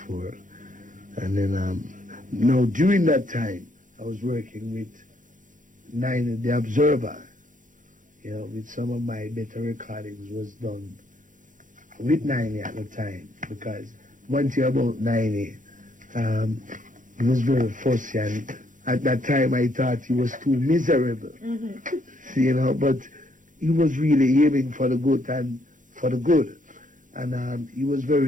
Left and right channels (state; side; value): late; left; 0.38 ms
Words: And then, now during that time, I was working with Niney, The Observer. With some of my better recordings was done with Niney at the time. Because one thing about Niney, he was very fussy, and at that time I thought he was too miserable. But he was really aiming for the good and for the good. And he was